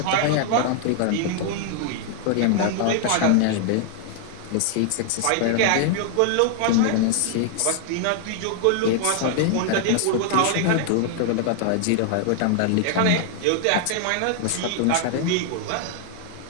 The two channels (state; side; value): different; both; correlation 0.00